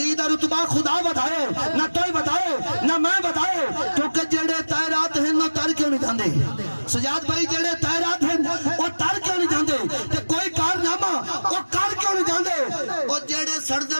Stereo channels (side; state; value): both; inverted; correlation -1.00